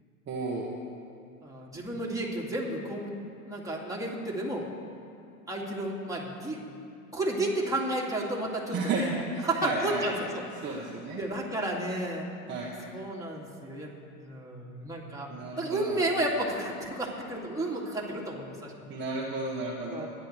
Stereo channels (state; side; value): normal; both; correlation 0.30